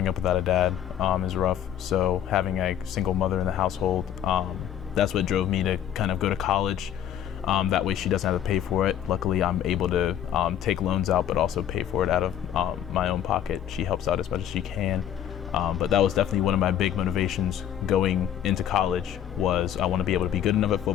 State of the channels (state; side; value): quieter; right; 10.4 dB